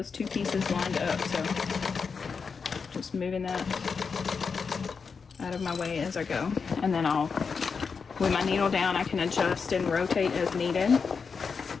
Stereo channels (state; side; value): quieter; right; 5.5 dB